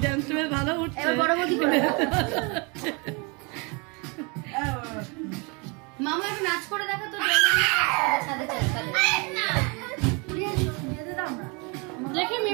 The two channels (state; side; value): quieter; left; 30.9 dB